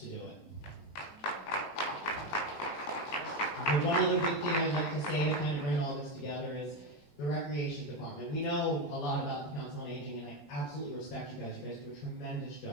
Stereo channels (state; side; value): late; right; 21 ms